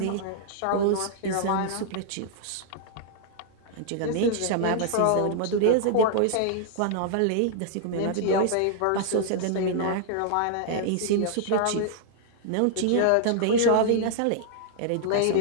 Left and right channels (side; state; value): both; different; correlation -0.01